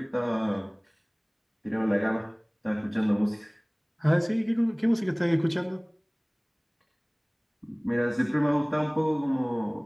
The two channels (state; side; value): identical; both; correlation 1.00